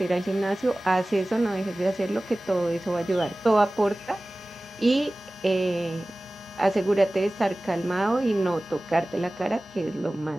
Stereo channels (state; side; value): normal; both; correlation 0.98